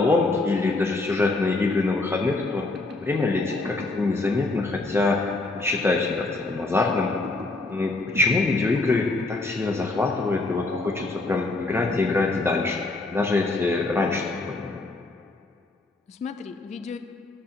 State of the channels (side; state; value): right; quieter; 3.1 dB